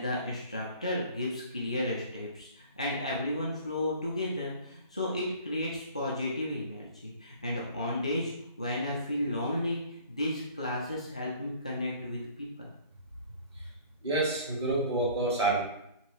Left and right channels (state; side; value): inverted; both; correlation -0.50